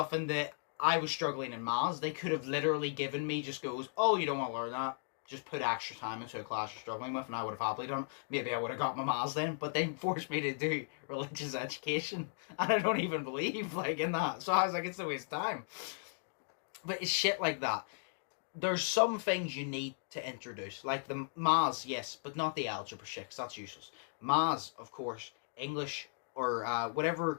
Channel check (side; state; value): right; silent; digital silence